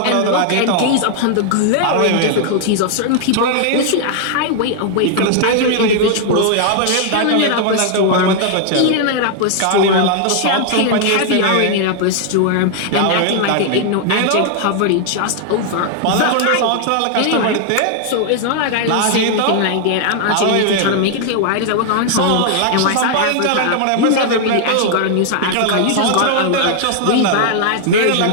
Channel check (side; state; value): both; different; correlation 0.00